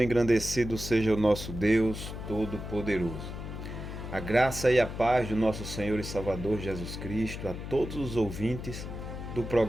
e engrandecido seja o nosso Deus Todo-Poderoso. A graça e a paz do nosso Senhor e Salvador Jesus Cristo a todos os ouvintes do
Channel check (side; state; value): left; noise; hum, 8 dB below the sound